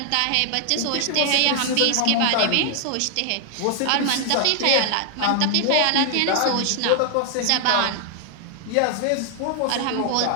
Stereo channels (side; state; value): both; different; correlation 0.00